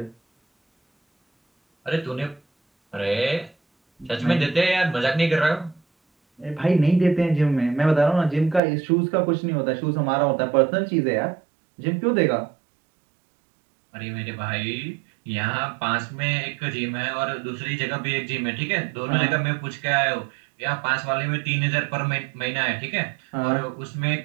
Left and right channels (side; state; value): left; drops out; at 8.6 s